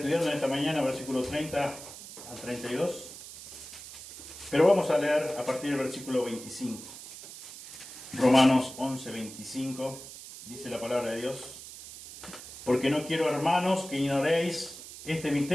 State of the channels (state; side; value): noise; right; hiss, 14 dB below the sound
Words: en esta mañana versículos 30 al 32, pero vamos a leer a partir del versículo 25. Romanos 11, 25, dice la palabra de Dios: porque no quiero, hermanos, que ignoréis este